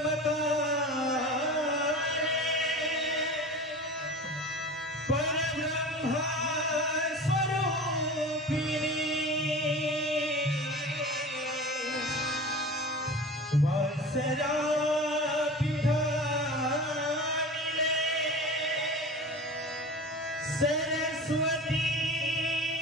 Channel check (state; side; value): normal; both; correlation 0.35